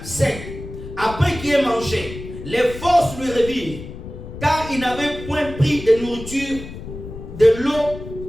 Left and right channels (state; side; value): noise; left; rumble, 12 dB below the sound